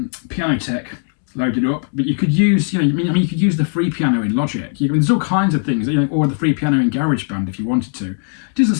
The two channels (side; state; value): right; silent; 67 dB below the other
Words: loaded up, but you could use, you could use the free piano in Logic. There's all kinds of things, or the free piano in GarageBand if you wanted to. It doesn't